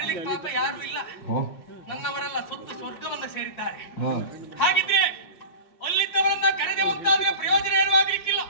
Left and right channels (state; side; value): late; right; 5.1 ms